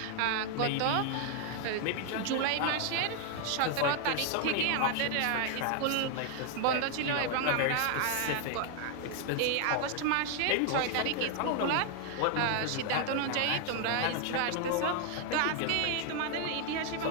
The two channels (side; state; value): both; different; correlation 0.00